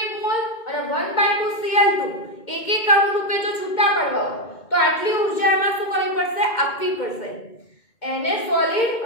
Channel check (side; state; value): right; late; 2.1 ms